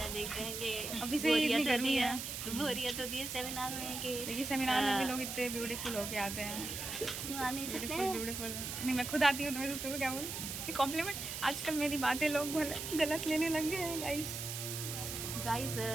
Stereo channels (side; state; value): right; noise; hiss, 5 dB below the sound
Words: देखते हैं कि अभी से इतनी गर्मी है, बोरियत होती है सेमिनार में। कि देखिए सेमिनार में भी लोग इतने ब्यूटीफुल होके आते हैं। आ नहीं सकते हैं। ब्यूटीफुल नहीं, मैं खुद आती हूँ तो मैं दूसरों को क्या बोलूँ, कॉम्प्लीमेंट। आजकल मेरी बातें लोग गलत लेने लग गए हैं। गाइस